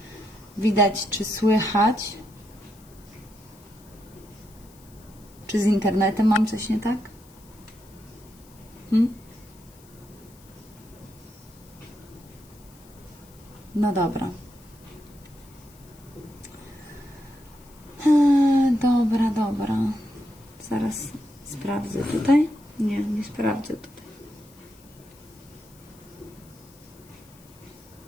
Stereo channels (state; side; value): noise; left; hiss, 26 dB below the sound